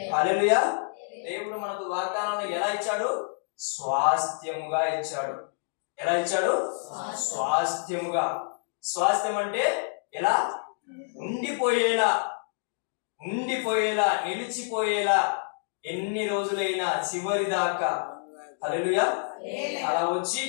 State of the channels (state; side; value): silent; right; digital silence